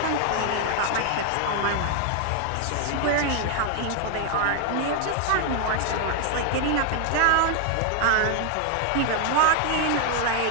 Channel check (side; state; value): both; different; correlation 0.00